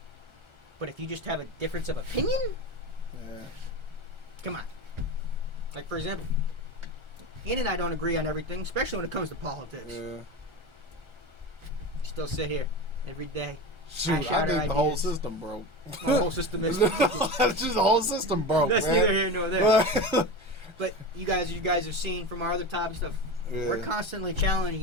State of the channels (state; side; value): late; left; 1.3 ms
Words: But if you just have a difference of opinion, come on. Like, for example, Ian and I don't agree on everything, especially when it comes to politics. Yeah. Still sit here every day. Shoot, I think the whole system broke. The whole system is That's just the whole system broke. That's man. neither here nor there. But you guys are seeing from our other topic stuff. Yeah. We're constantly challenging